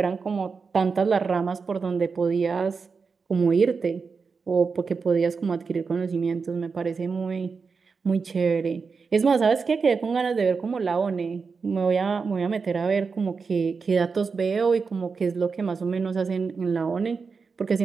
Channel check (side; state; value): left; quieter; 5.0 dB